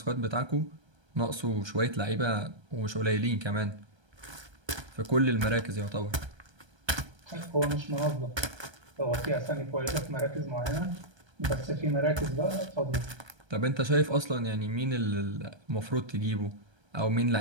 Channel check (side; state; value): left; late; 1.3 ms